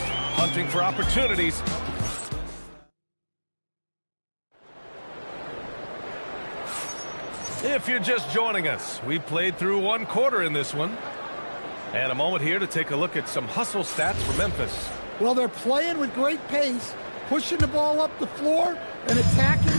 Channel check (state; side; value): inverted; both; correlation -1.00